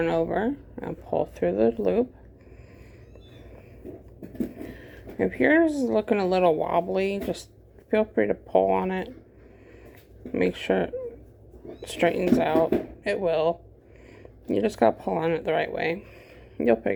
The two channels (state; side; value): identical; both; correlation 1.00